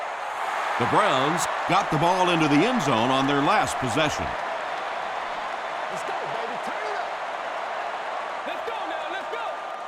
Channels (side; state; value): both; identical; correlation 1.00